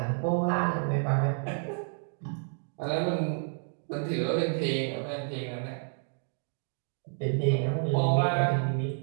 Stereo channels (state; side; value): silent; left; 57 dB below the other